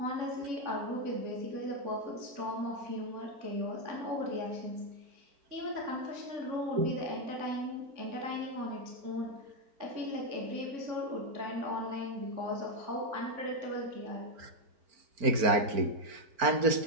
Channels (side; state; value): left; late; 4.4 ms